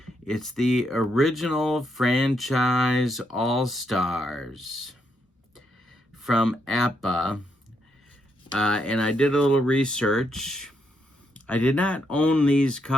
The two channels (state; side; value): normal; both; correlation 0.78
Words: It's the original franchise All-Stars from APA. And I did a little research. I did not own these